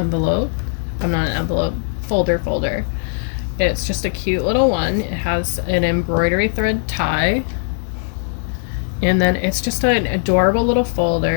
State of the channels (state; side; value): silent; right; digital silence